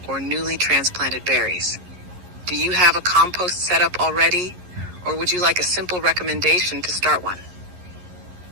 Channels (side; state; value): left; late; 11 ms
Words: or newly transplanted berries. Do you have a compost setup already, or would you like a simple recommendation to start one?